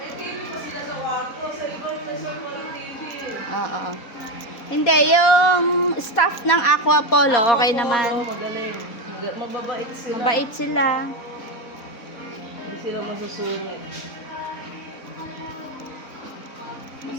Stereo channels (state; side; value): late; right; 4.2 ms